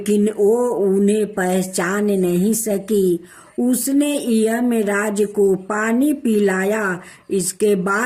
वो उन्हें पहचान नहीं सकी। उसने यमराज को पानी पिलाया। इसके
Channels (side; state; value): both; identical; correlation 1.00